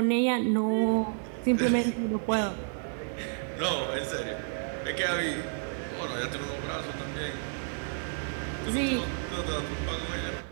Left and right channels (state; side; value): silent; left; 57 dB below the other